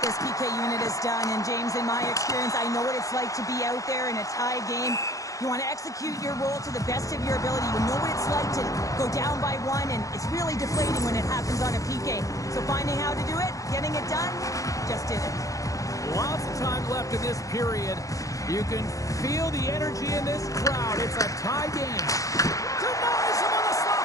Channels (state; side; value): late; right; 0.16 ms